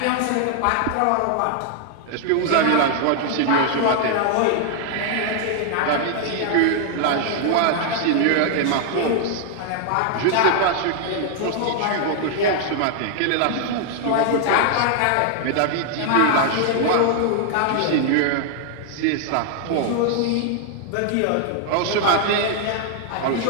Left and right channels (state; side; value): different; both; correlation 0.00